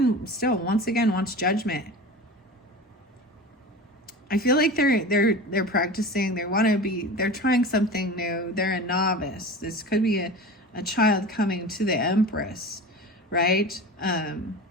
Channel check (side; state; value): both; normal; correlation 0.33